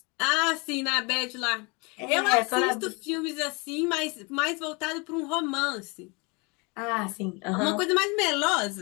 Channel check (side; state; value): right; quieter; 29.1 dB